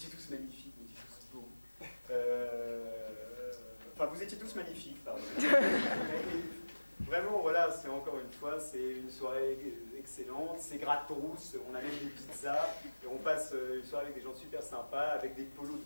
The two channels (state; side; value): inverted; both; correlation -1.00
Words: tous magnifiques, vous étiez tous beaux. Enfin, vous étiez tous magnifiques, pardon. Vraiment, voilà, c'est encore une fois, c'est une soirée excellente, c'est gratos, on a même des pizzas, et on passe une soirée avec des gens super sympas, avec des polos de